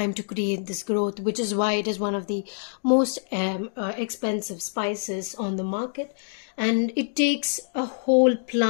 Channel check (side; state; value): right; silent; digital silence